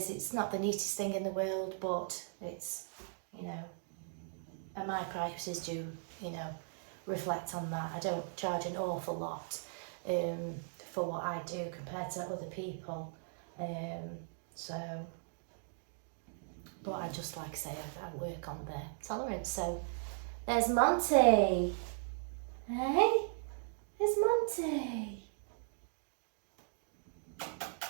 it's not the neatest thing in the world, but it's, you know, and my prices do, you know, reflect on that. I don't charge an awful lot for what I do compared to other people. But I just, like I say, I work on their tolerance. So there's Monty. Hey, there's Monty.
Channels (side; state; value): left; silent; digital silence